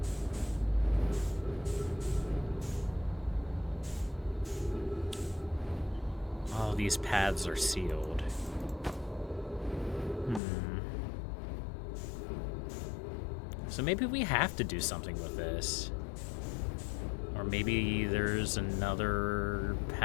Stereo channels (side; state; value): right; drops out; at 10.4 s